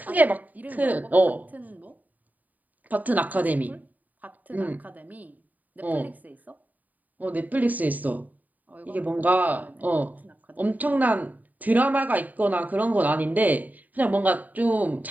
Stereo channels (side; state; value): left; late; 0.080 ms